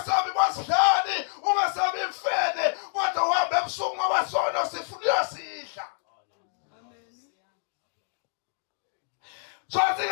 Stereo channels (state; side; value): silent; right; digital silence